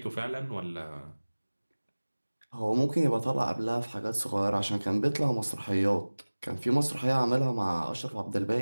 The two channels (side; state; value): both; inverted; correlation -1.00